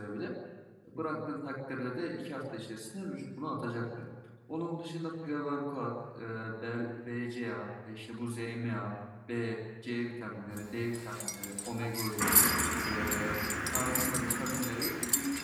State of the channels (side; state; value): both; identical; correlation 1.00